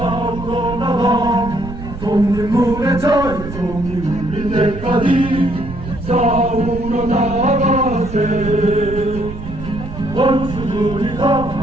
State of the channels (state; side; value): noise; right; rumble, 10 dB below the sound